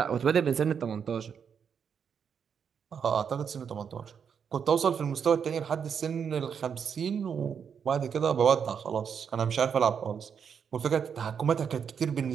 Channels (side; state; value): left; quieter; 7.2 dB